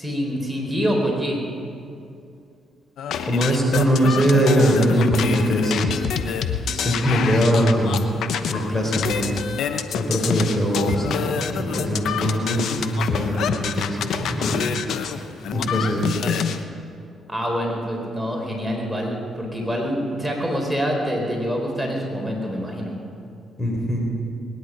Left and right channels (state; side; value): normal; both; correlation 0.74